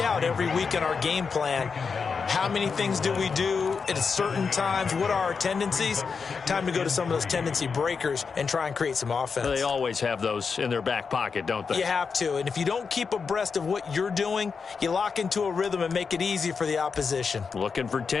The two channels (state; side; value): quieter; right; 5.4 dB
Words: every week in our game plan. How many things do we do at certain times? What are our tendencies? Time to go to some of those tendency breakers and try and create some offense. They always have those in their back pocket, don't they? You have to, and if you don't keep abreast of what you're doing, you lock into a rhythm and make it easy for the opposition. Looking for